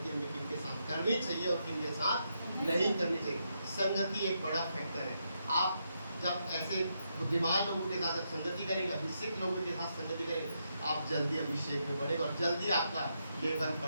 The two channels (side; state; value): both; inverted; correlation -0.81